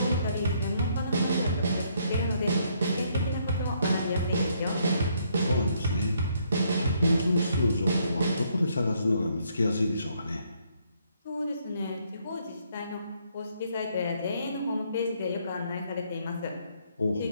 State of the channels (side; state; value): both; inverted; correlation -0.70